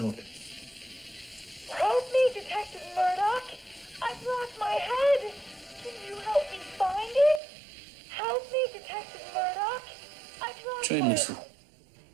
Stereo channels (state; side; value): drops out; left; at 7.4 s